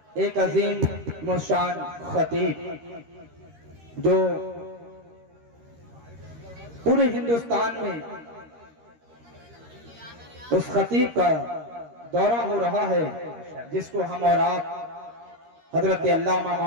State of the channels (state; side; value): late; left; 13 ms